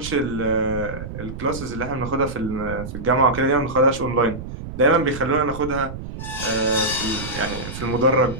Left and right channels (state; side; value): noise; right; rumble, 10 dB below the sound